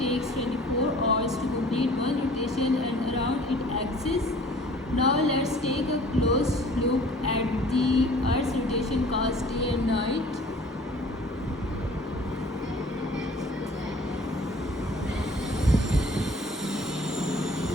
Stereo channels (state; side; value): normal; both; correlation 0.50